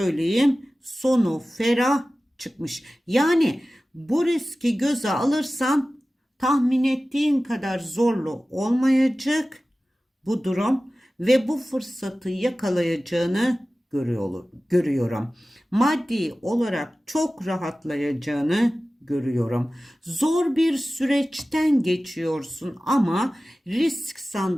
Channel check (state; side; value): normal; both; correlation 0.96